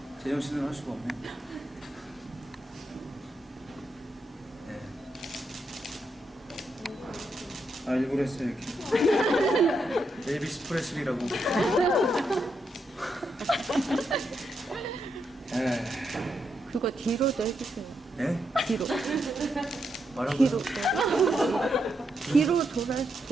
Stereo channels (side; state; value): both; normal; correlation 0.81